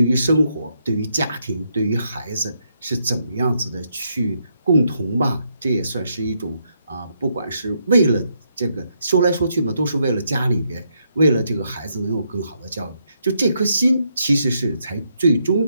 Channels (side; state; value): both; inverted; correlation -0.77